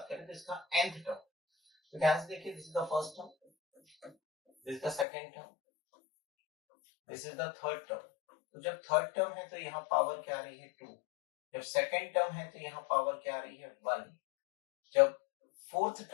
करें तो इसका nth टर्म, तो ध्यान से देखिए, this is the first term, this is the second term, this is the third term. तो जब थर्ड टर्म है तो यहाँ पावर क्या आ रही है? 2। जब सेकंड टर्म है तो यहाँ पावर क्या आ रही है? 1। जब फोर्थ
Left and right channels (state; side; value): drops out; right; at 5.1 s